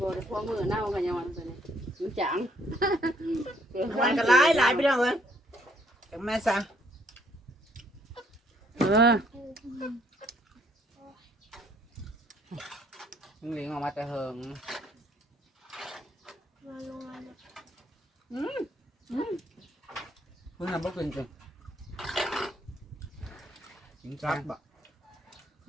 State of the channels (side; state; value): both; normal; correlation 0.67